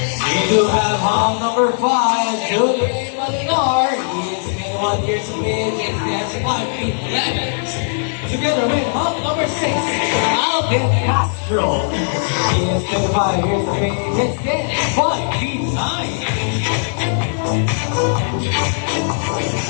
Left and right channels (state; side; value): silent; right; digital silence